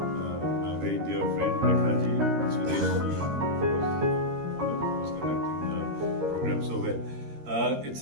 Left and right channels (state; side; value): late; left; 13 ms